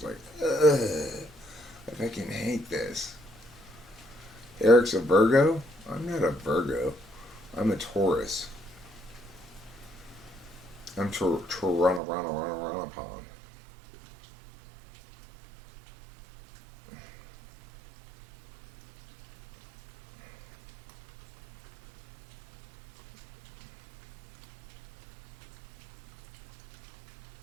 like, ugh, I fucking hate this. Eric's a Virgo? I'm not a Virgo. I'm a Taurus. I'm Toronto.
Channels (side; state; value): left; drops out; at 12.0 s